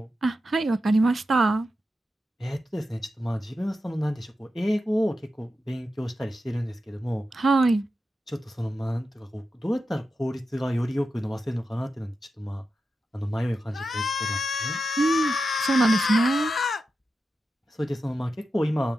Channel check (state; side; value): normal; both; correlation 0.89